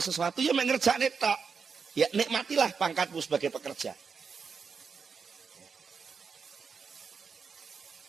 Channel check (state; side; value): quieter; left; 5.6 dB